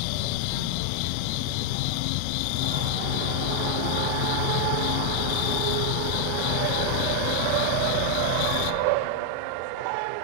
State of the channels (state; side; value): different; both; correlation 0.00